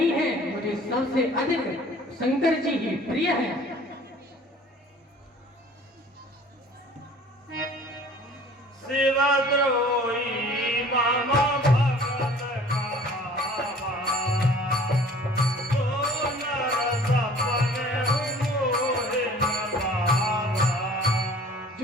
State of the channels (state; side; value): normal; both; correlation 0.49